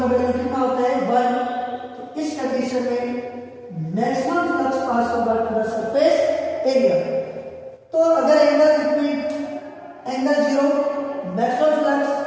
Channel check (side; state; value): both; identical; correlation 1.00